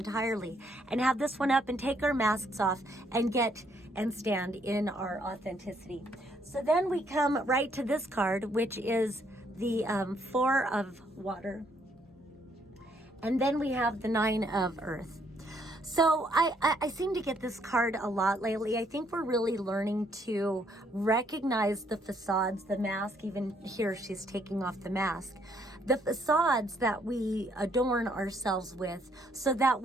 and have this one up and take our masks off and get and stand in our authenticity. So then we come right to this card, which is the 4 of water. And then we have the 9 of earth. So I seem to get this card a lot lately. I think we're really learning to recognize the facades, the mask. Even here, she's taking off the mask. The facades that we adorn ourselves with so that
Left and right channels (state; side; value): normal; both; correlation 0.69